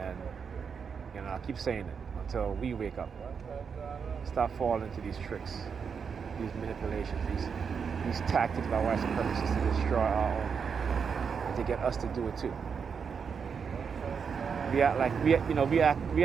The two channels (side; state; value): left; quieter; 6.3 dB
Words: And I'll keep saying it until we wake up. Stop falling into these tricks, these manipulations, these tactics by white supremacists to destroy our own, and to get us to do it too. We act like we